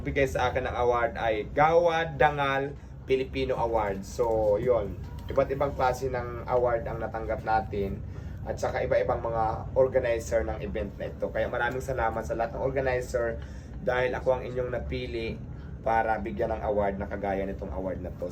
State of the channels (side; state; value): both; identical; correlation 1.00